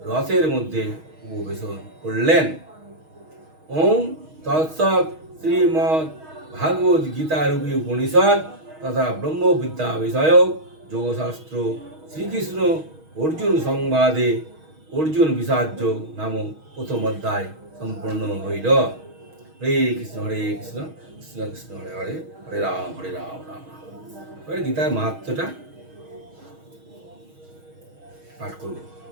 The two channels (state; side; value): late; left; 6.3 ms